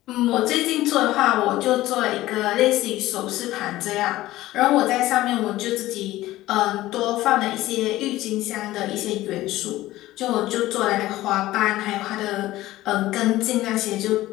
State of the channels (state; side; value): quieter; right; 16.3 dB